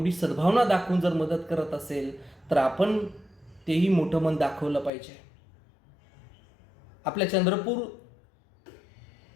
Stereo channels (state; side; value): drops out; right; at 4.9 s